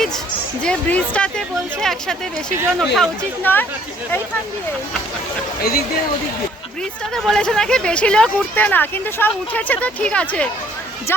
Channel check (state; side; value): normal; both; correlation 0.61